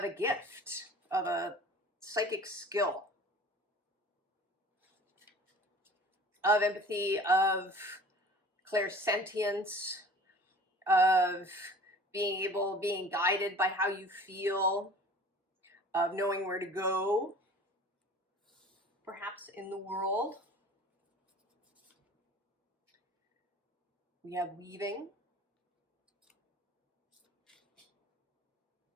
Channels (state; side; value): normal; both; correlation 0.45